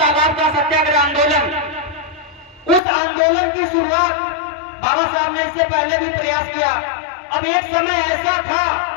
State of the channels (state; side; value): drops out; right; at 2.8 s